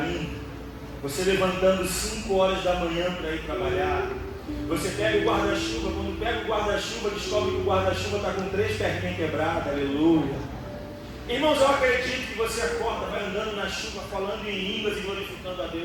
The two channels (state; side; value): identical; both; correlation 1.00